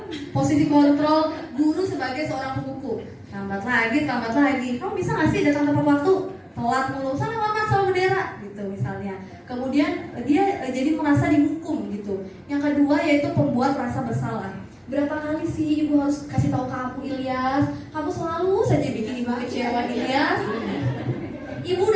guru sebagai seorang penghukum. Lambat lagi. Kamu bisa nggak sih datang tepat waktu? Telat mulu, sana hormat sama bendera gitu misalnya. Kemudian dia jadi merasa dihukum gitu. Yang kedua yaitu pembuat rasa bersalah. Berapa kali sih ibu harus kasih tahu kamu, Ilyas? Kamu selalu saja bikin ibu kecewa, Ilyas. Ibu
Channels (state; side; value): identical; both; correlation 1.00